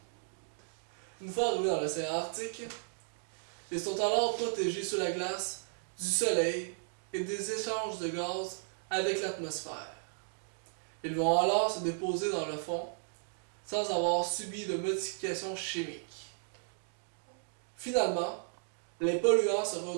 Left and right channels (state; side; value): silent; left; digital silence